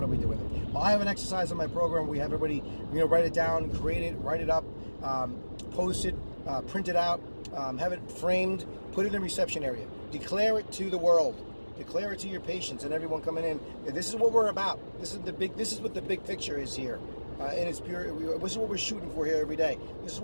do we do with it? Well, I have an exercise in my program. We have everybody, write it down, create it, write it up, post it, print it out, have it framed, put it in the reception area. Declare it to the world. Declare it to your patients and everyone coming in. This is what we're about. This is what the big picture is here. In its pure, this is what we're shooting for here every day. This is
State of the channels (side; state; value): both; inverted; correlation -1.00